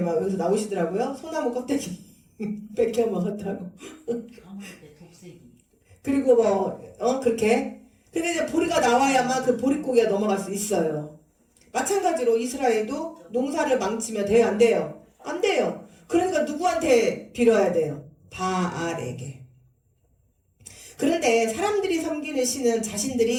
여기서 나오시더라고요. 소나무 껍데기 뺏겨 먹었다고. 그리고 그렇게. 근데 이제 보리가 나와야만 그 보릿고개가 넘어갈 수 있어요. 마찬가지로 이스라엘도 농사를 망치면 돼요? 안 돼요? 안 돼요. 그러니까 누구한테 빌어야 돼요? 바알에게. 그런데 사람들이 섬기는 신은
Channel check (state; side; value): identical; both; correlation 1.00